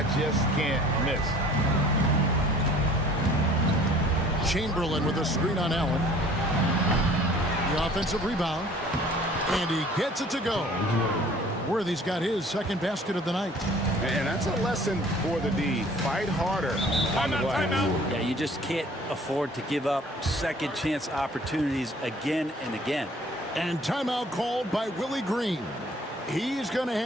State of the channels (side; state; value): both; normal; correlation 0.52